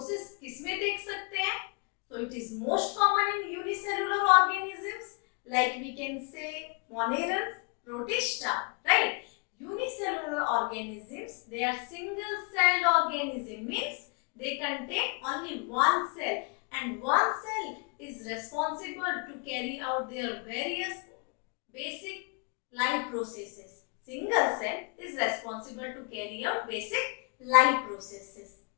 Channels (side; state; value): right; quieter; 34.5 dB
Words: किसमें देख सकते हैं? So it is most common in unicellular organisms, like we can say monerans, protista, right? Unicellular organisms, they are single-celled organism, means they contain only one cell, and one cell is responsible to carry out their various basic life processes. Single cell is responsible to carry out basic life processes.